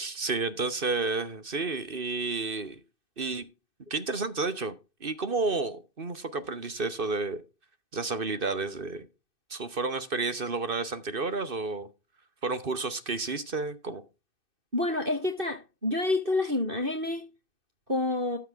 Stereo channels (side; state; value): left; late; 2.6 ms